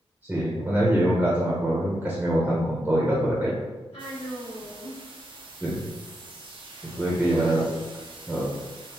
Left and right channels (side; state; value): both; normal; correlation 0.84